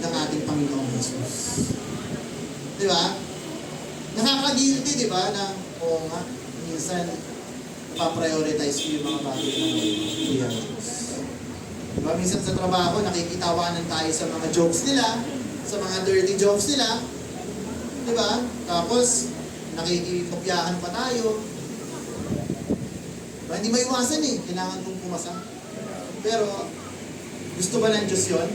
ating Panginoong Jesus. Diba? Nakaka-guilty, diba, na oo nga, minsan paprioritize ko yung mga bagay ng Kuya Jesus. Diba, minsan sa trabaho, nakikitawanan tayo sa mga jokes nila, sa mga dirty jokes nila. Diba? Tapos, nakikipopyahan pa tayo. Diba? Hindi maiwasan eh. Kailangan kong pumasa. Pero, gusto ba ng Diyos yun?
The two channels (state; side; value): identical; both; correlation 1.00